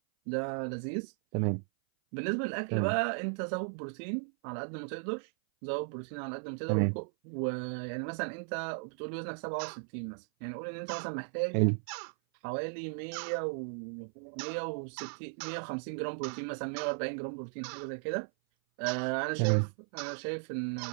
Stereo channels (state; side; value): silent; left; 54 dB below the other